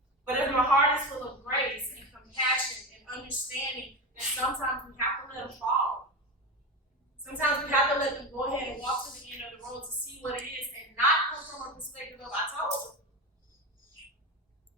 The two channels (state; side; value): normal; both; correlation 0.20